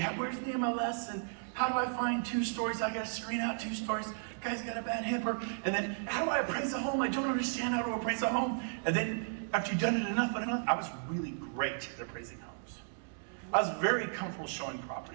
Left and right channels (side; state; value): left; silent; digital silence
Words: Where's the MLS and how do I find 2 stories? I got to screen out 2 stories. Guy's got a bad hipper. And then how do I appraise a home? I don't understand how to appraise a home. And then after you've done it enough, I was really great at appraising homes. I was very comfortable showing